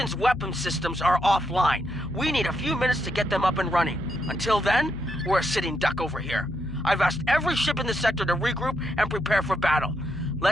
weapon systems are offline. We need a few minutes to get them up and running. Until then, we're a sitting duck over here. I've asked every ship in the sector to regroup and prepare for battle.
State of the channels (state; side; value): noise; left; hum, 12 dB below the sound